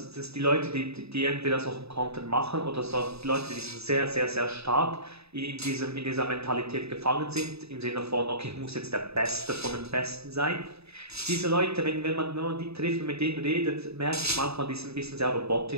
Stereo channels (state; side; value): late; left; 0.79 ms